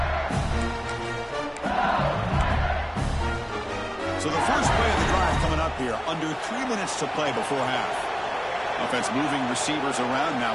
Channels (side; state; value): both; identical; correlation 1.00